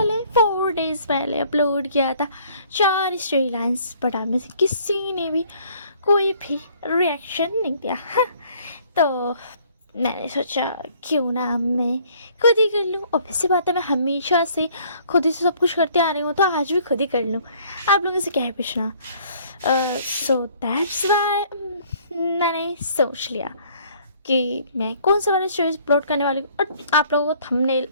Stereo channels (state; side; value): inverted; both; correlation -0.59